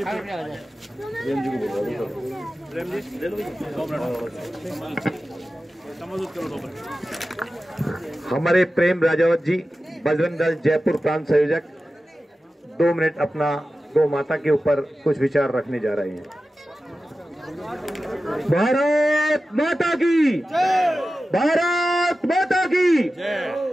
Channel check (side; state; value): both; normal; correlation 0.94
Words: हमारे प्रेम राजावत जी बजरंग दल जयपुर प्रांत संयोजक 2 मिनट अपना गौ माता के ऊपर कुछ विचार रखने जा रहे हैं। भारत माता की, भारत माता की,